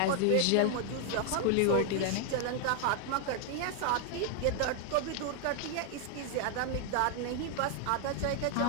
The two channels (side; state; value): both; different; correlation 0.00